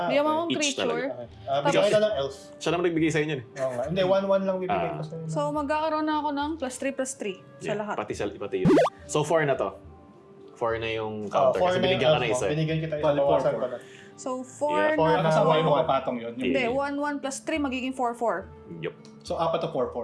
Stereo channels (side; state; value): both; identical; correlation 1.00